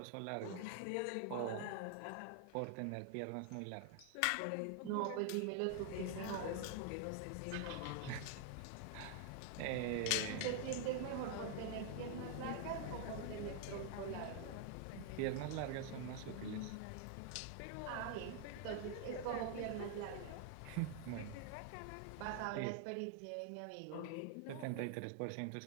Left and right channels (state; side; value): different; both; correlation 0.00